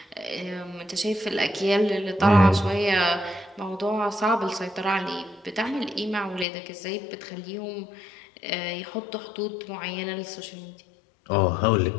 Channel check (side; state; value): right; drops out; at 6.5 s